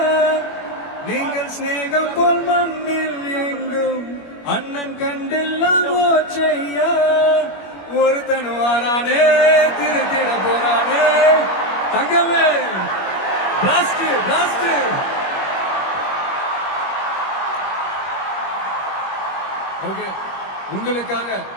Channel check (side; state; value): right; late; 21 ms